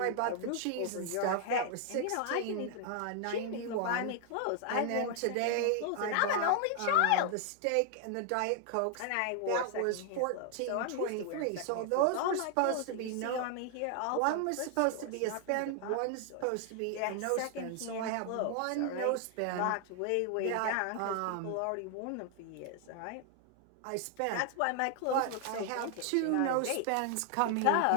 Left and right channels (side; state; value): both; different; correlation 0.00